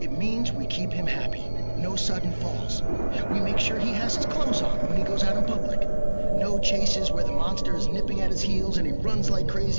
It means we keep him happy. No sudden falls. We make sure he has his clothes on when he goes out in public. No chases where the monster is nipping at his heels and he runs like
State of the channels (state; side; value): inverted; both; correlation -1.00